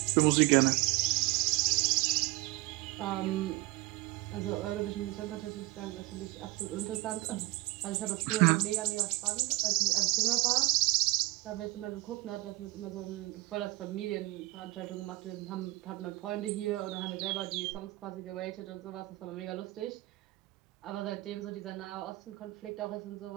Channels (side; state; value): left; quieter; 21.2 dB